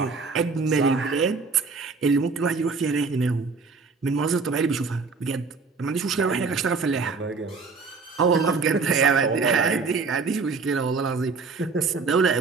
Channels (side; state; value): left; quieter; 4.5 dB